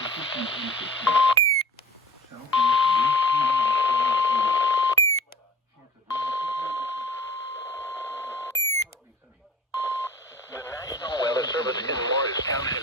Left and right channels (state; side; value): normal; both; correlation 0.41